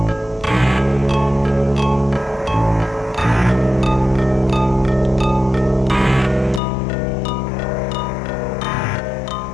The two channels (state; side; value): drops out; right; at 6.6 s